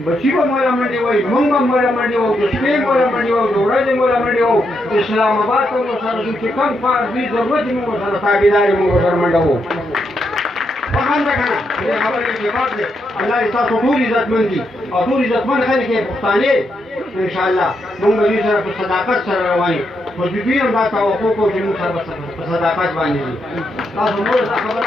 بچی به مولا منډې وایي مونږ به مولا منډې وو د شپې مولا منډې وو د ورځې مولا منډې وو اسلام آباد ته مو سره ځو چې کوم کار دوی ضرورت یې مونږ سره تابعداري مونږ سره منډه وو فهم ده که نه دې خبرې کې بات دی الله دې ستاسو ټول عزتمند دي او ټول عزتمند خلک یې پښتانه انشاءالله مونږ به دوی سره په صداقت سره روان یو خو دوی هم دا توقع کوو چې مونږ سره په صداقت باندې دي تاسو نور دا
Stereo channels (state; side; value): normal; both; correlation 0.81